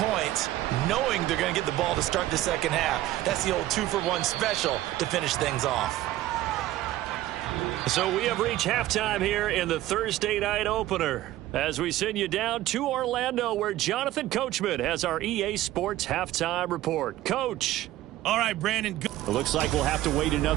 knowing they're going to get the ball to start the second half. That's the old 2-for-1 special to finish things off. So we have reached halftime here in the Thursday night opener as we send you down to Orlando, where Jonathan Coachman has our EA Sports halftime report. Coach. All right, Brandon. It looks like we'll have to wait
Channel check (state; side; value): quieter; left; 15.0 dB